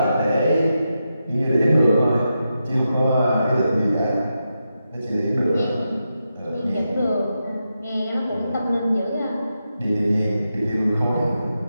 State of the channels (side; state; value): both; inverted; correlation -0.87